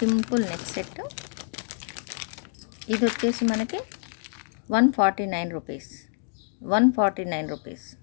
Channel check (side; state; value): right; silent; digital silence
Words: neck set. ఇది వచ్చేసి మనకి 149 రూపీస్. 149 rupees